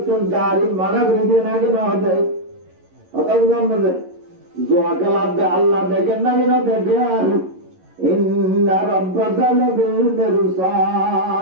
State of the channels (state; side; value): late; left; 11 ms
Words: তারিখ মানা করে দিয়ে নাকি না দেয় কথা বুঝলাম না জোয়া খেলা আল্লাহ দেখেন নাকি না দেখেন ইন্না রাব্বাকা লাবিল